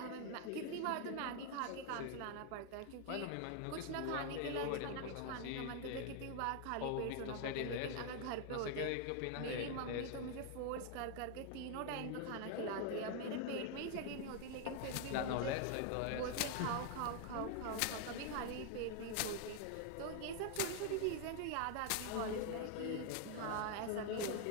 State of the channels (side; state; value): both; different; correlation 0.00